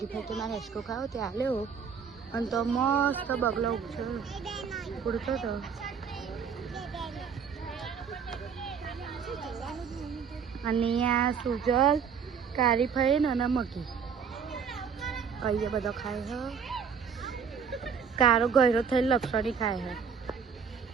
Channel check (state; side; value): quieter; left; 6.6 dB